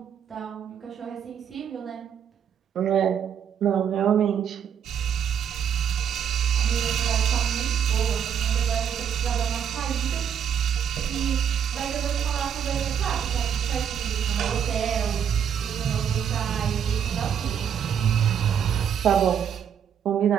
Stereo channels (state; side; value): quieter; left; 8.3 dB